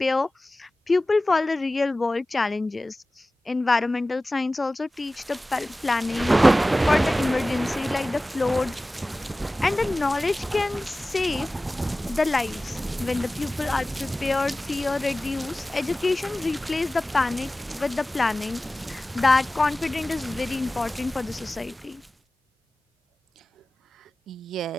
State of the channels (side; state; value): both; normal; correlation 0.97